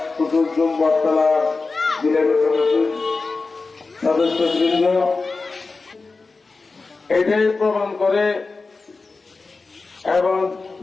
কুতুবজুম বটতলার বিলের সদস্যবৃন্দ এটাই প্রমাণ করে এবং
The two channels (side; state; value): right; quieter; 4.0 dB